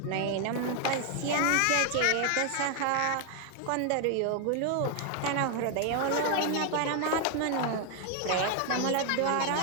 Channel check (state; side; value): different; both; correlation 0.00